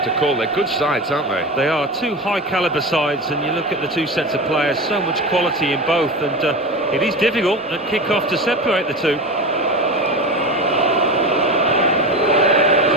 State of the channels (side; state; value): both; normal; correlation 0.25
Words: to call. They're good sides, aren't they? They are two high-caliber sides, and you look at the two sets of players, so much quality in both, and it is difficult at kick-off to separate the two. It's